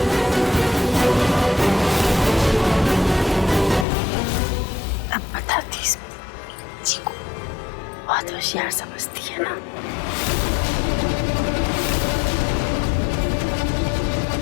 अब बताती इस जी को, बहुत होशियार समझती है ना।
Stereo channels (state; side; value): drops out; right; at 3.9 s